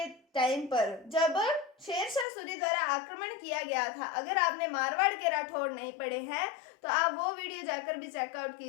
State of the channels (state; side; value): drops out; right; at 2.2 s